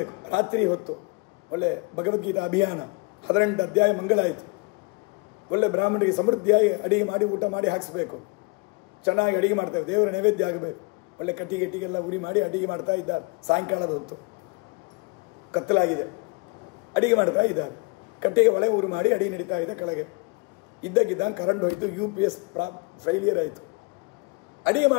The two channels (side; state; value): right; quieter; 29.8 dB